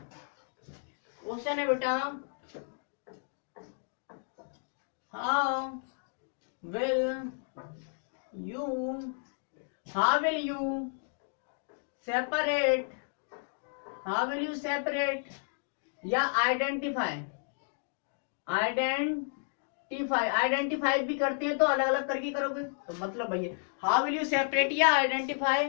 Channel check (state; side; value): silent; right; digital silence